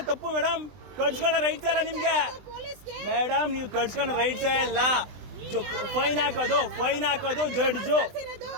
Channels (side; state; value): left; late; 20 ms